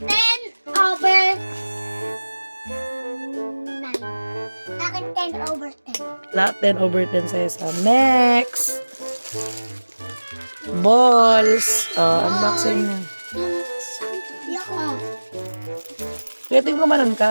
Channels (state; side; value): inverted; both; correlation -1.00